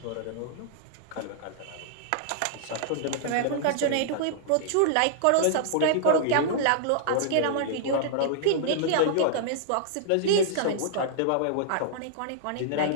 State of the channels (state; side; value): different; both; correlation -0.01